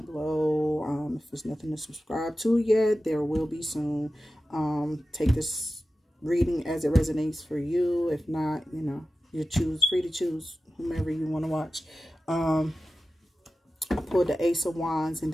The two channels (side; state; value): both; normal; correlation 0.94